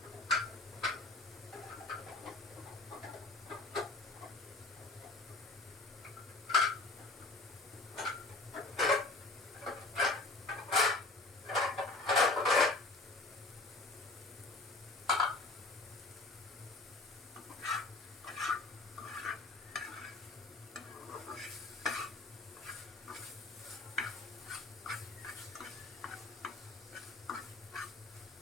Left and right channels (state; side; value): quieter; right; 3.2 dB